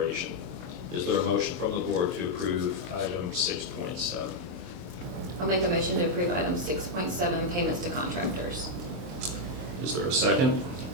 Is there a motion from the board to approve item 6.7? I'll make a motion to approve item 6.7, payments to contractors. Is there a second?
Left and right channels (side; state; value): left; late; 23 ms